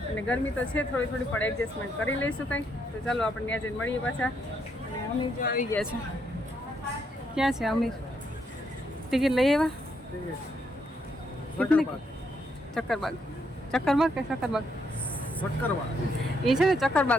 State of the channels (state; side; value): normal; both; correlation 0.76